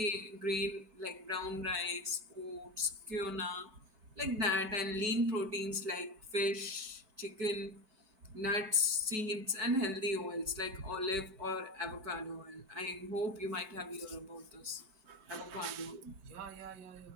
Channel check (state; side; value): late; left; 5.1 ms